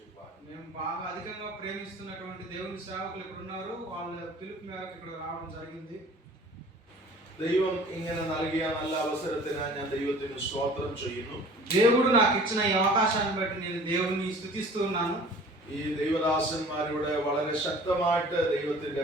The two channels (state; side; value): normal; both; correlation 0.47